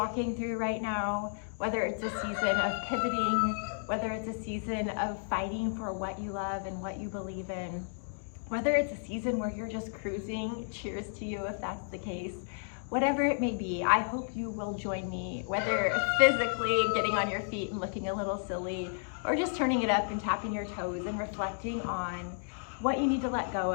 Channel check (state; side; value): silent; right; digital silence